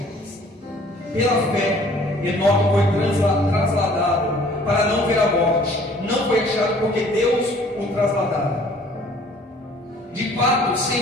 Pela fé, Enoque foi trasladado para não ver a morte, não foi achado porque Deus o trasladara. De fato,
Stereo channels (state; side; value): normal; both; correlation 0.55